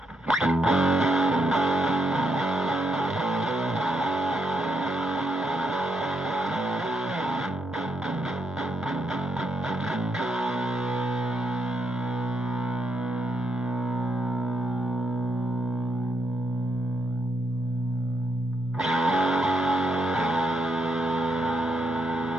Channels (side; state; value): both; normal; correlation 0.78